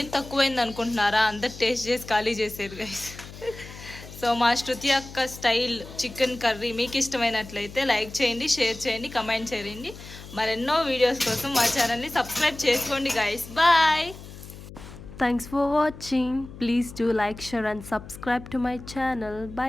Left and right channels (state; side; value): noise; left; hum, 15 dB below the sound